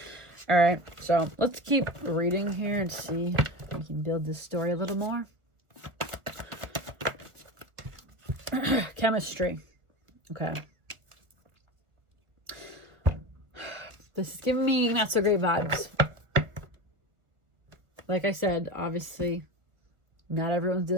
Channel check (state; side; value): late; left; 1.4 ms